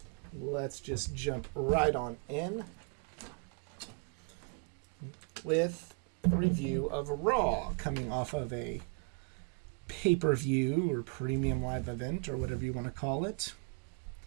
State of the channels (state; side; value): quieter; left; 33.9 dB